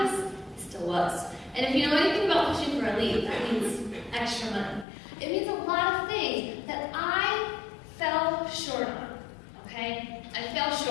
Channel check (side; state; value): right; drops out; at 4.9 s